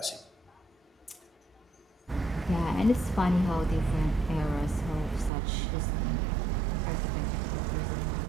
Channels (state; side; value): drops out; left; at 5.3 s